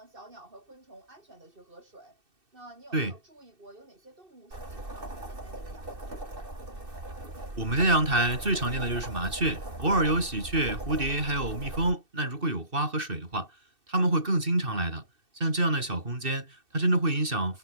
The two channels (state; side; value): late; left; 2.6 ms